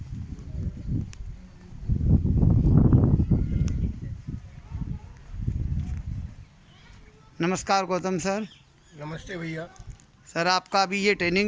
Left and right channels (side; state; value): both; identical; correlation 1.00